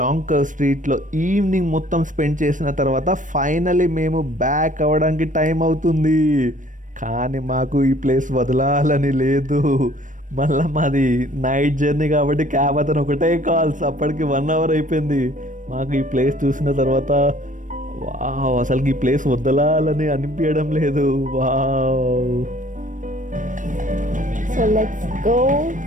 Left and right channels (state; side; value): late; left; 0.37 ms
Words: స్ట్రీట్లో ఈవినింగ్ మొత్తం స్పెండ్ చేసిన తర్వాత ఫైనలీ మేము బ్యాక్ అవ్వడానికి టైం అవుతుంది. కానీ మాకు ఈ ప్లేస్ వదలాలని లేదు. మళ్ళీ మాది నైట్ జర్నీ కాబట్టి క్యాబ్ అతను ఒకటే కాల్స్, అప్పటికి 1 hour అయిపోయింది. మాకు ఈ ప్లేస్ చూసిన తర్వాత వావ్, అసలుకి ఈ ప్లేస్ వదలాలని అనిపించడం లేదు. Wow, so let's go